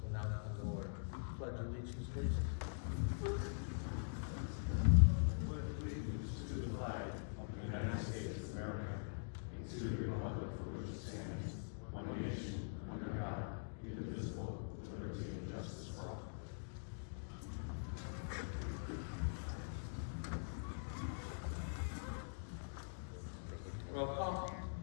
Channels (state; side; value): silent; right; digital silence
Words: will now come to order. Pledge allegiance, please. Pledge allegiance to the flag of the United States of America and to the republic for which it stands, one nation, under God, indivisible, with liberty and justice for all. Roll call.